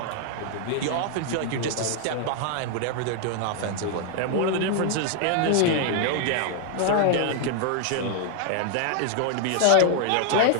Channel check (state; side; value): different; both; correlation 0.00